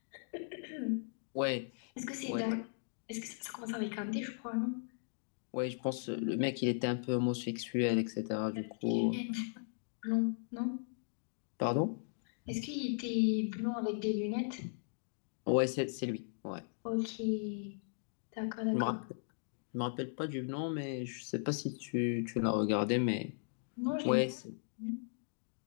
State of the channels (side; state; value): right; silent; digital silence